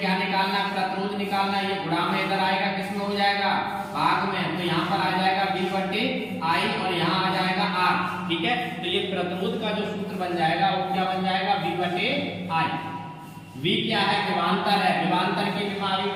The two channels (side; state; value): both; identical; correlation 1.00